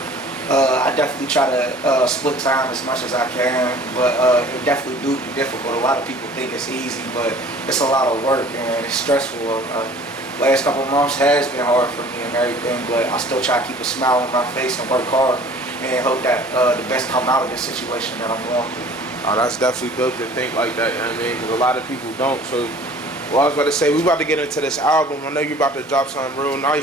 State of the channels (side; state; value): both; normal; correlation 0.49